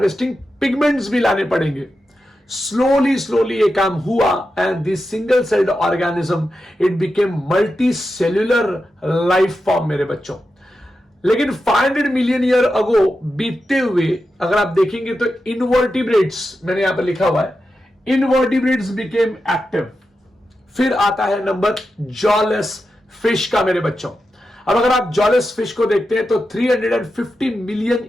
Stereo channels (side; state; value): both; normal; correlation 0.89